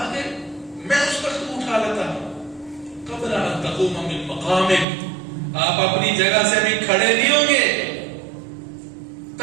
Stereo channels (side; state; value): left; drops out; at 4.9 s